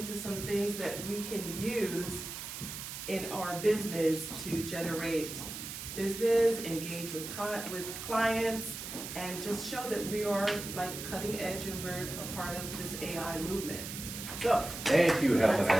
some things that we can use in our business to generate business, engage with clients, and just show that we are like cutting edge and we're a part of this AI movement. So, thank you, Helen. let's I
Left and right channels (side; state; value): right; noise; hiss, 8 dB below the sound